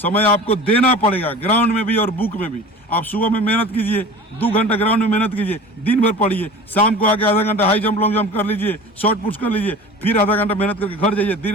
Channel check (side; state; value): both; normal; correlation 0.38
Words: आपको देना पड़ेगा, ग्राउंड में भी और बुक में भी। आप सुबह में मेहनत कीजिए, 2 घंटा ग्राउंड में मेहनत कीजिए, दिन भर पढ़िए, शाम को आके आधा घंटा हाई जंप लॉन्ग जंप कर लीजिए, शॉर्ट पुश कर लीजिए, फिर आधा घंटा मेहनत करके घर जाइए,